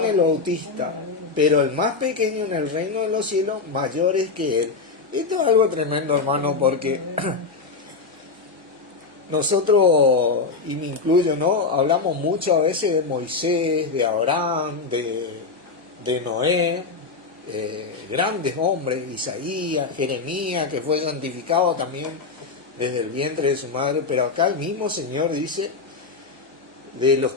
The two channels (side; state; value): right; quieter; 4.5 dB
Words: el Bautista. Pero el más pequeño en el reino de los cielos, mayor es que él. Esto es algo tremendo, hermano, porque nosotros, y me incluyo, ¿no? Hablamos mucho a veces de Moisés, de Abraham, de Noé, grandes hombres, Isaías, Jeremías, que fue santificado también desde el vientre de su madre, pero acá el mismo Señor dice: de los